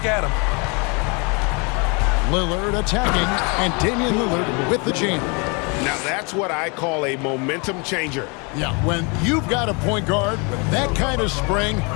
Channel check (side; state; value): right; quieter; 31.9 dB